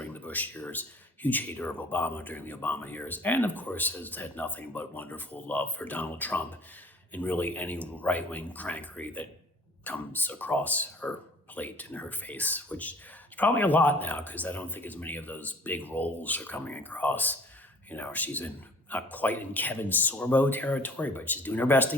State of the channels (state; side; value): normal; both; correlation 0.50